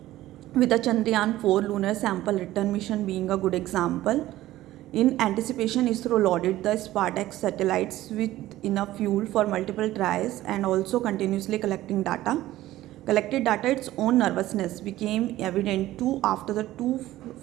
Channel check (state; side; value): quieter; left; 15.3 dB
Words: with the Chandrayaan 4 lunar sample return mission being a good example. In anticipation, ISRO loaded the SPARDEX satellites with enough fuel for multiple tries and also continuously collecting data. Collected data, its own nervousness became evident too after the